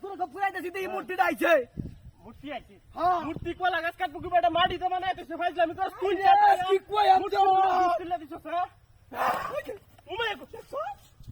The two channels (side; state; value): both; identical; correlation 1.00